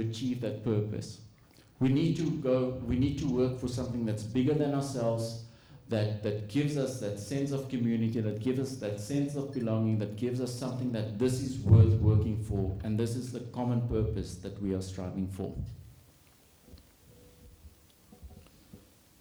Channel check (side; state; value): both; identical; correlation 1.00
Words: that purpose? We need to work for something that's bigger than ourselves, that gives us that sense of community, that gives us that sense of belonging, that gives us something that this is worth working for, and this is the common purpose that we are striving for.